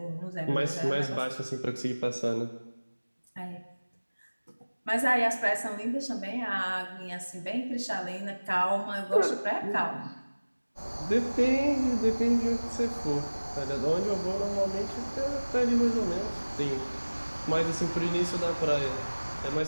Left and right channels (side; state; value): both; inverted; correlation -1.00